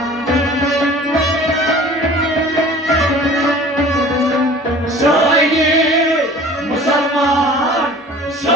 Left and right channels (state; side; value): normal; both; correlation 0.45